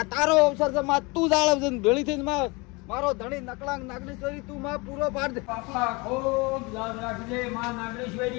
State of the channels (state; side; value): quieter; right; 26.6 dB